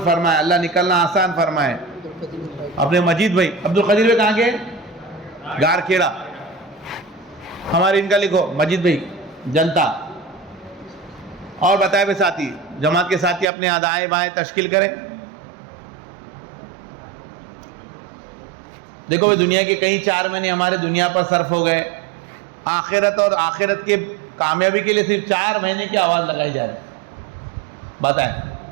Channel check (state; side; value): drops out; left; at 13.5 s